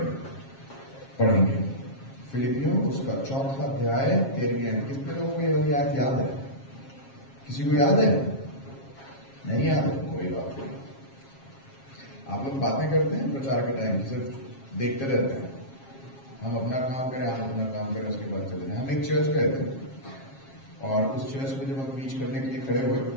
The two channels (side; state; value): right; late; 7.4 ms